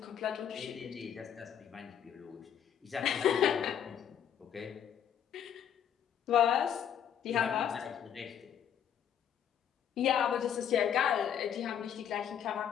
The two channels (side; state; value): right; quieter; 9.2 dB